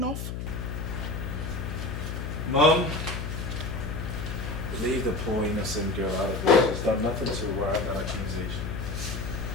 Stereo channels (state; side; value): noise; left; hum, 5 dB below the sound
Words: Mom, leave the poor innocent girl out of it. She's done nothing to warrant that accusation.